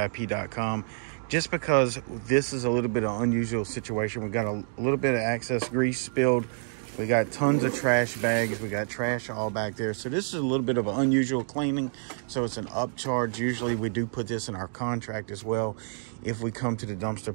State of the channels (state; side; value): silent; left; 59 dB below the other